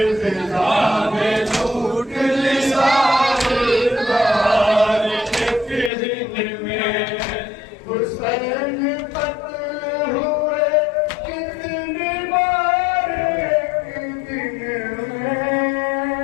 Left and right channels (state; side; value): drops out; right; at 5.9 s